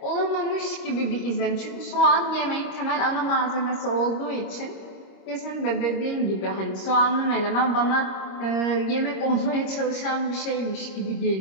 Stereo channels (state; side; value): late; right; 26 ms